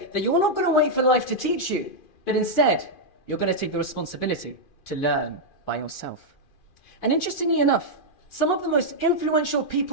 that you're not going to wait for life to teach you, but instead, you're going to take the responsibility to learn by yourself. And interestingly enough, some of the most influential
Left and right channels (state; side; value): late; right; 2.4 ms